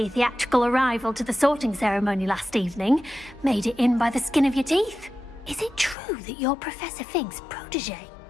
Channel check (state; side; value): drops out; right; at 6.0 s